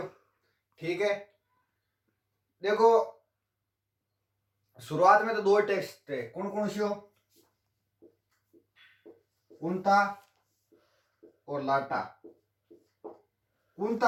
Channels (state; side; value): identical; both; correlation 1.00